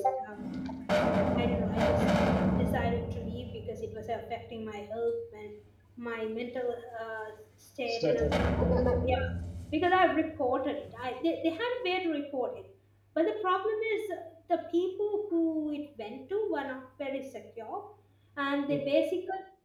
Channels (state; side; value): identical; both; correlation 1.00